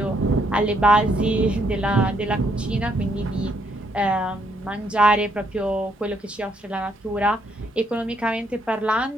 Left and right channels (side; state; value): both; normal; correlation 0.72